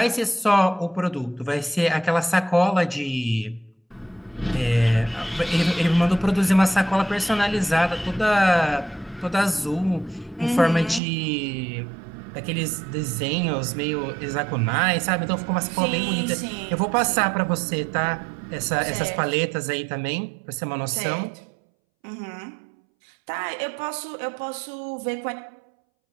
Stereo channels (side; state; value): left; drops out; at 11.0 s